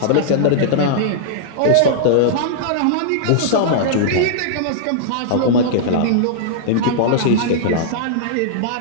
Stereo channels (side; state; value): both; different; correlation -0.02